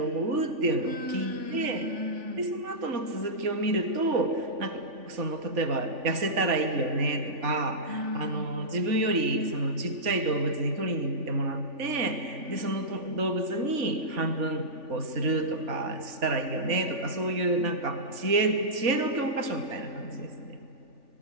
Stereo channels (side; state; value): left; late; 3.4 ms